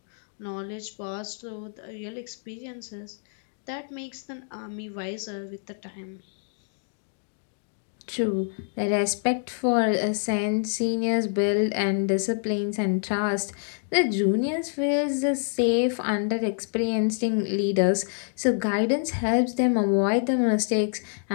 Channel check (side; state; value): right; silent; 60 dB below the other